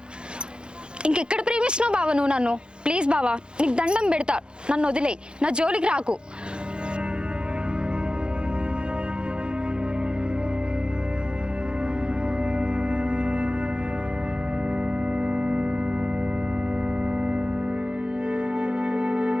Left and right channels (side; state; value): left; late; 0.051 ms